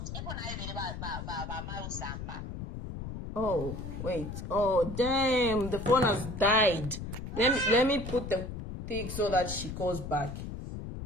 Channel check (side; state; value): left; noise; rumble, 7 dB below the sound